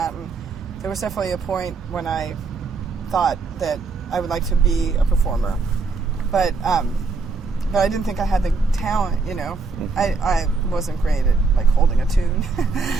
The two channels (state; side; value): quieter; left; 4.3 dB